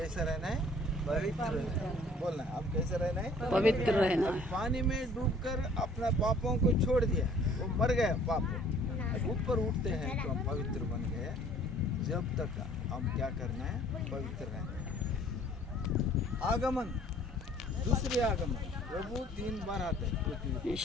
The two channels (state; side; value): normal; both; correlation 0.55